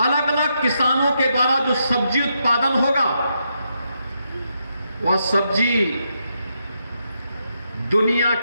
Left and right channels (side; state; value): both; inverted; correlation -0.81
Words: अलग अलग किसानों के द्वारा जो सब्जी उत्पादन होगा, वह सब्जी दुनिया